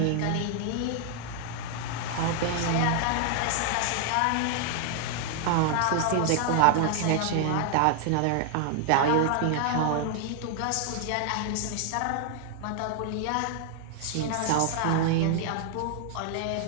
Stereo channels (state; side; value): different; both; correlation 0.00